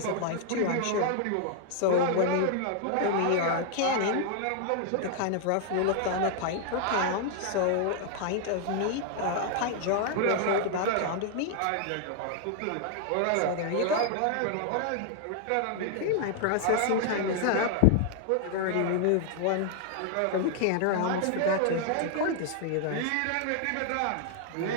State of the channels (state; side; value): different; both; correlation 0.00